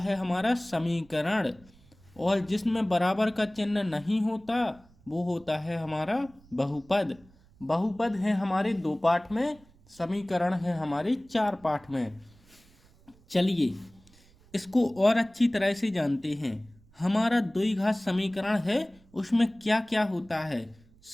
हमारा समीकरण, और जिसमें बराबर का चिन्ह नहीं होता वो होता है हमारा बहुपद। बहुपद है हमारे 2 पार्ट में, समीकरण है हमारे 4 पार्ट में। चलिए इसको और अच्छी तरह से जानते हैं। हमारा द्विघात समीकरण है, उसमें क्या क्या होता है।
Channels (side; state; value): right; noise; rumble, 28 dB below the sound